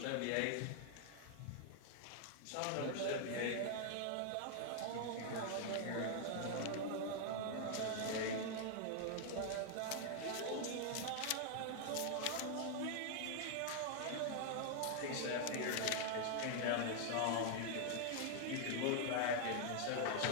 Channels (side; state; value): both; different; correlation 0.00